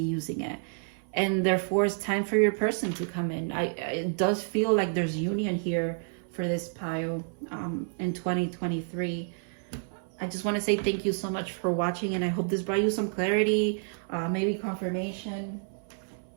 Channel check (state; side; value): silent; left; 58 dB below the other